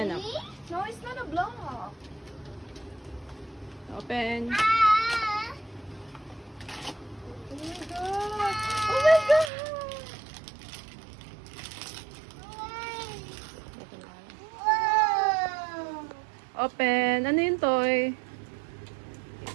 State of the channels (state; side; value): drops out; left; at 9.5 s